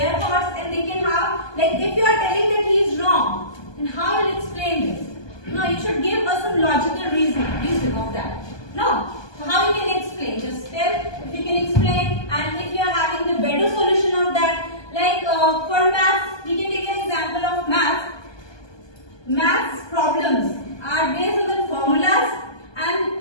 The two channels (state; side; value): late; right; 1.2 ms